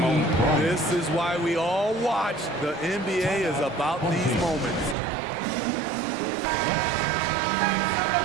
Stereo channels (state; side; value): drops out; left; at 5.0 s